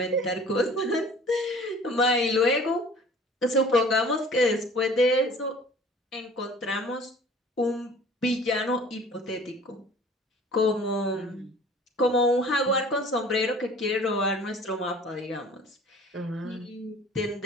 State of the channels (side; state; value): both; normal; correlation 0.48